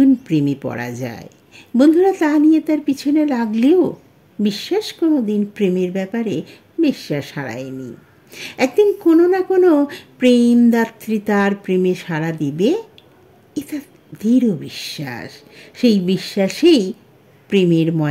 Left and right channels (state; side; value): identical; both; correlation 1.00